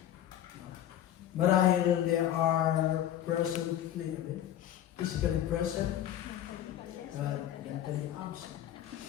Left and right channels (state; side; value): quieter; right; 11.4 dB